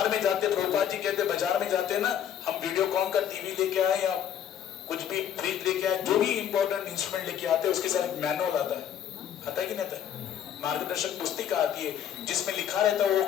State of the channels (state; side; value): quieter; right; 9.6 dB